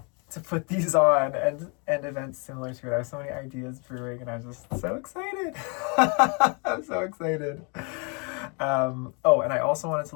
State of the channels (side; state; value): right; quieter; 34.8 dB